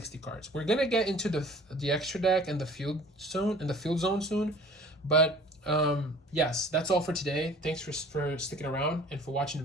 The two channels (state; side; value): normal; both; correlation 0.48